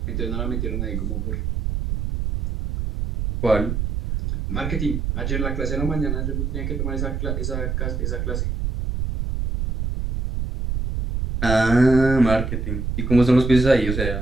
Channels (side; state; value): right; noise; rumble, 2 dB below the sound